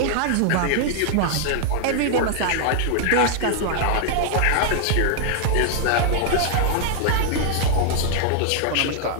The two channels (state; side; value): different; both; correlation 0.00